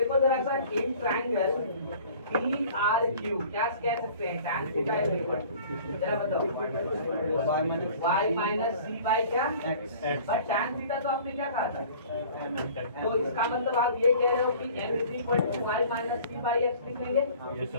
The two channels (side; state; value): both; inverted; correlation -0.48